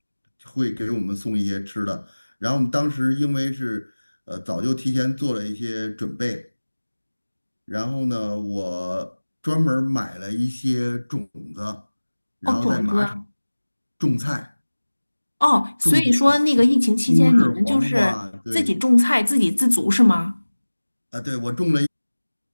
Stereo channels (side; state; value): both; inverted; correlation -1.00